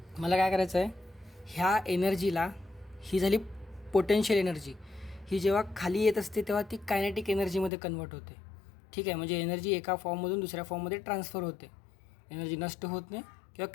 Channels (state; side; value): drops out; right; at 7.7 s